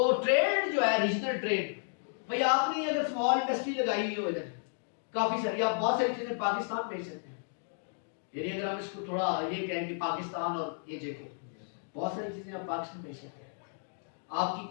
ट्रेड जो है, रीजनल ट्रेड, भाई आपने अगर स्मॉल इंडस्ट्री लगाई हुई हो इधर, काफी सारी, आप बहुत सारी चीजें पाकिस्तान भेज सकते हैं। यानी अगर हम इसको थोड़ा ये कहें कि पाकिस्तान और ये जगह बहुत सारी चीजें आप पाकिस्तान भेज सकते हैं। आपकी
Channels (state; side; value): silent; right; digital silence